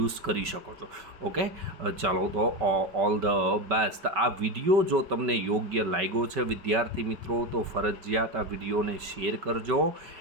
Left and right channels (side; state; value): left; late; 5.3 ms